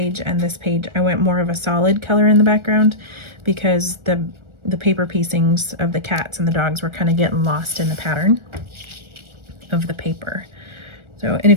and this page, I went more of a solid color in the background, because the paper piecings of the cats and the dogs were kind of getting lost in the pattern of the paper. So, and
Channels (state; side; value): late; left; 1.4 ms